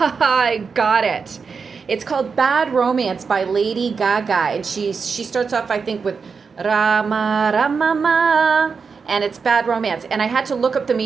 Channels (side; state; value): left; quieter; 5.4 dB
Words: got it. It's called Bad Romance by Lady Gaga, and she starts off, I think, with Rama Ramama, and it's Bad Romance. And I had to look up the